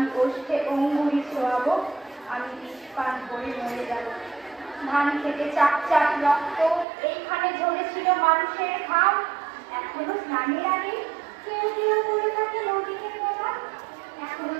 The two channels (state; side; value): drops out; left; at 6.9 s